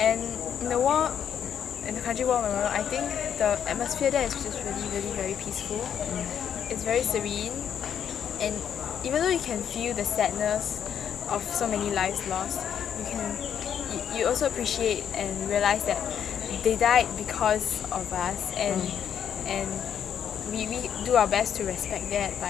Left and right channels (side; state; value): right; quieter; 8.7 dB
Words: in the Kranji War Memorial, I think the atmosphere there is just really, really very peaceful. It's very serene, and even though you can feel the sadness of so many lives lost, you also appreciate and realize that they died because of us, and we do our best to respect that